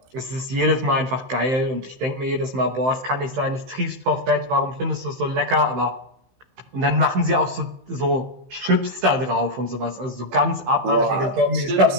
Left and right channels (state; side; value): late; left; 15 ms